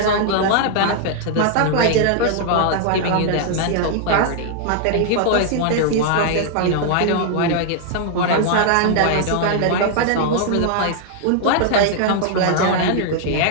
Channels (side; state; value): both; different; correlation -0.01